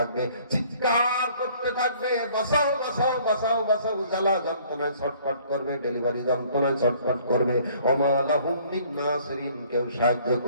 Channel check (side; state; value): both; inverted; correlation -0.58